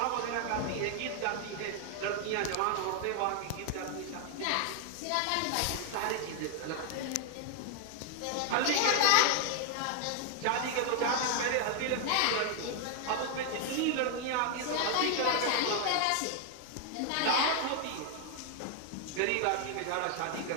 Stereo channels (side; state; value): both; different; correlation 0.00